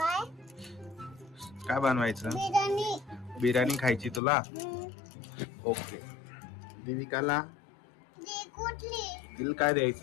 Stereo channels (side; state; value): right; drops out; at 4.2 s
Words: काय बनवायचं? बिर्याणी बिर्याणी खायची तुला? ओके. देविकाला कुठली तिला काय